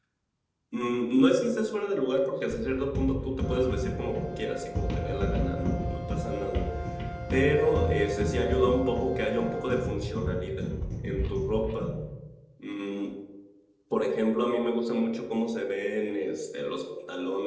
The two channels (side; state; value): both; identical; correlation 1.00